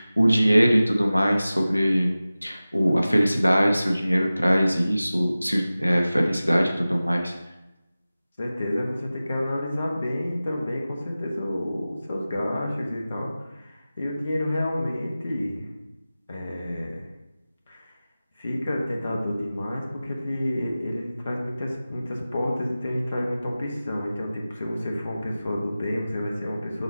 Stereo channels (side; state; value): both; inverted; correlation -0.96